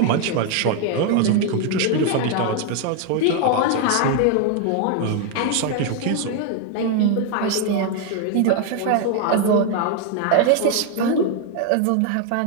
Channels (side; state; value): both; different; correlation 0.01